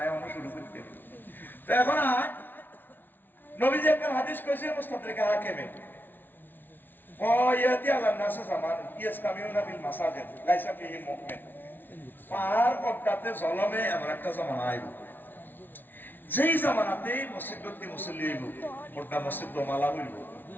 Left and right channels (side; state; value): right; late; 0.092 ms